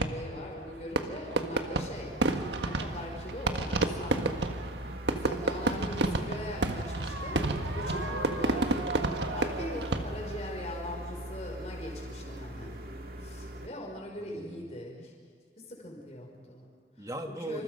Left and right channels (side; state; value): both; normal; correlation 0.32